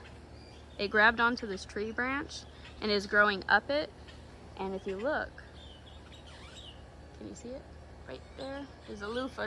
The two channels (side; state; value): both; identical; correlation 1.00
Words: It grabbed onto this tree branch and is growing up it. And if you look, can you see it? Right there, there's a loofah